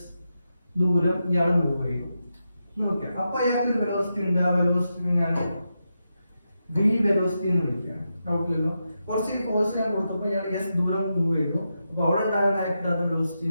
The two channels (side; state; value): both; inverted; correlation -0.87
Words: ദൂരം ഇയാൾ മൂവ് ചെയ്തു. നോക്കാം, അപ്പൊ അയാൾക്ക് ഒരു വെലോസിറ്റി ഉണ്ട്. ആ വെലോസിറ്റി ഞാൻ വി വെലോസിറ്റി എന്ന് വിളിക്കുകയാണ്. ഡൗട്ടില്ലല്ലോ, കുറച്ച് ഫോഴ്സ് ഞാൻ കൊടുത്തപ്പോൾ ഇയാൾ എസ് ദൂരം മൂവ് ചെയ്തു. അപ്പൊ അവിടെ ഉണ്ടാകുന്ന ആക്ട് വെലോസിറ്റി